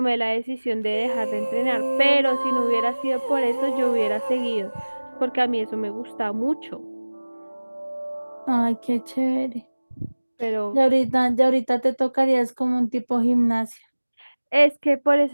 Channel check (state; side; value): inverted; both; correlation -1.00